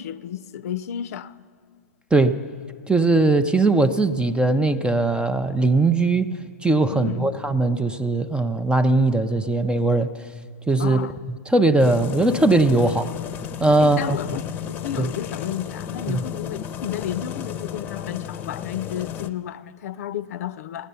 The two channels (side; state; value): both; normal; correlation 0.64